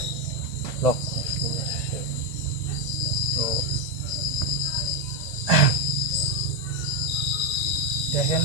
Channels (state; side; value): late; right; 1.8 ms